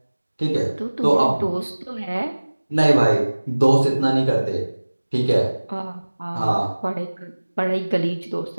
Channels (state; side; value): inverted; both; correlation -1.00